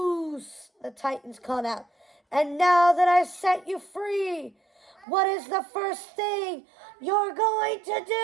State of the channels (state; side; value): drops out; left; at 5.1 s